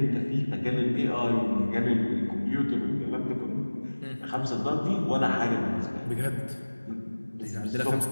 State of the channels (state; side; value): inverted; both; correlation -1.00